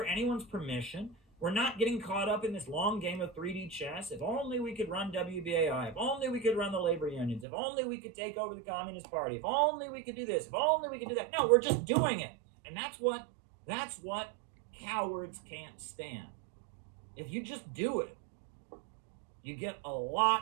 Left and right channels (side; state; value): left; drops out; at 7.5 s